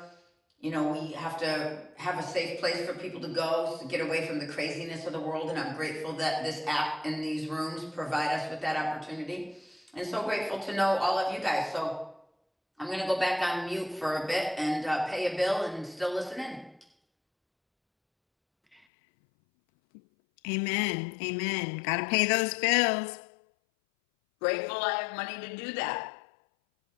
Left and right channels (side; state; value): right; drops out; at 18.8 s